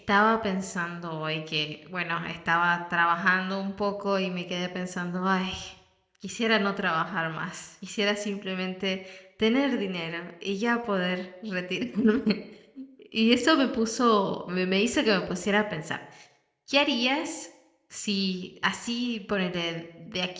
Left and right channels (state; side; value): identical; both; correlation 1.00